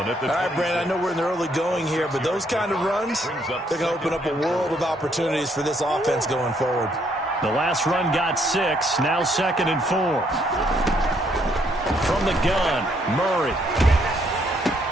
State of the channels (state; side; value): normal; both; correlation 0.70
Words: at the 26. All right, Brandon, I know we're in the early going here, but those kind of runs, they're going to open up a world of opportunities for this offense going forward. The last run got 6, now 2nd and 4. From the gun, Murray.